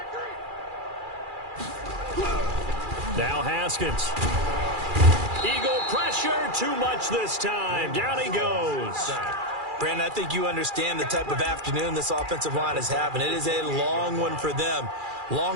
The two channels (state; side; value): late; left; 2.4 ms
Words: Now Haskins. Eagle pressure, too much this time. Down he goes. Brandon, I think you understand the type of afternoon this offensive line is having. It is a long one for them.